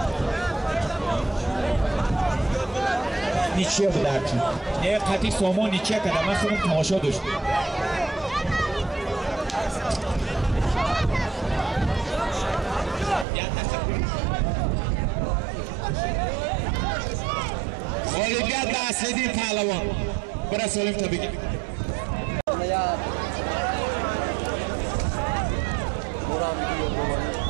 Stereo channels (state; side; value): drops out; left; at 13.2 s